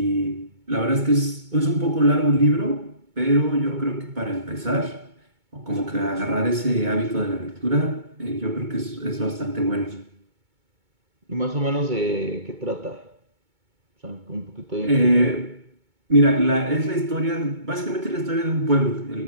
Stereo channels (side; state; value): left; late; 2.2 ms